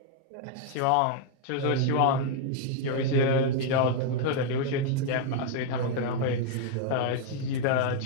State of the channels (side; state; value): both; different; correlation 0.00